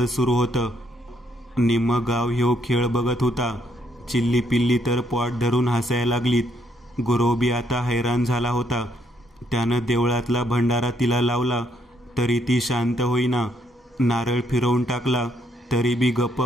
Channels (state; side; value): normal; both; correlation 0.72